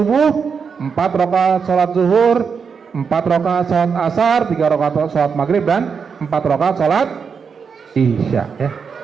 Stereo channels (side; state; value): left; quieter; 6.0 dB